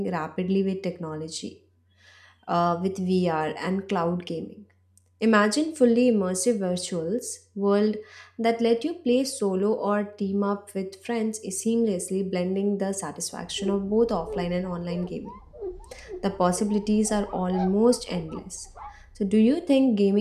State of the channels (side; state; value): both; identical; correlation 1.00